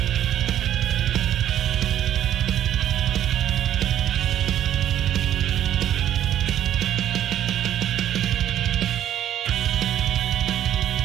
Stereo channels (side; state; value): left; quieter; 11.2 dB